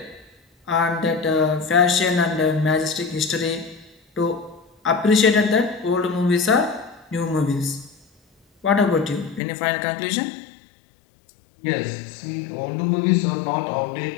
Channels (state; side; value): drops out; right; at 9.4 s